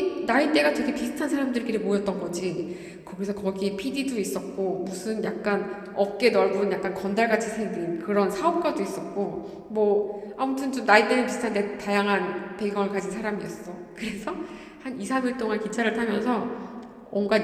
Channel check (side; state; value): both; identical; correlation 1.00